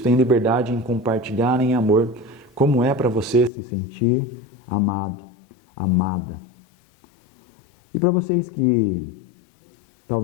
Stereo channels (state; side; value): drops out; right; at 3.5 s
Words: tenha liberdade em compartilhar em amor como é para você se sentir amado, amada. E para vocês que